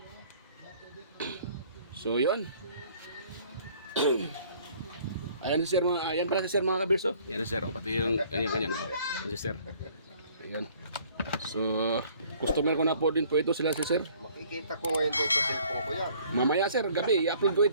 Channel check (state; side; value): inverted; both; correlation -0.57